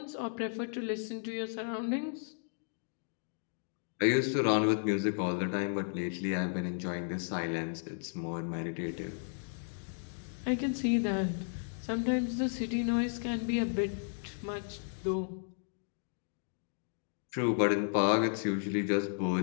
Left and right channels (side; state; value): right; silent; digital silence